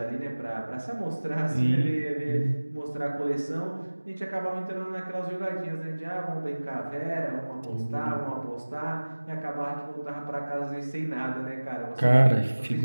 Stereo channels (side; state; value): both; inverted; correlation -1.00